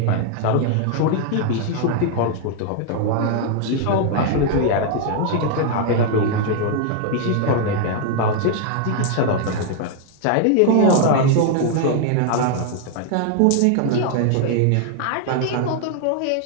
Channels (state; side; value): different; both; correlation 0.00